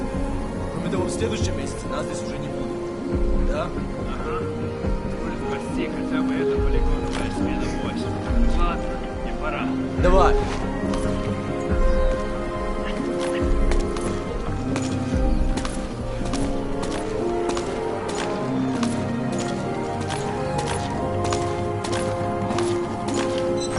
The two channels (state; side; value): identical; both; correlation 1.00